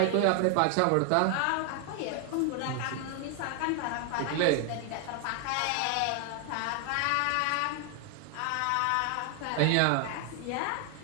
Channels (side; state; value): both; different; correlation 0.00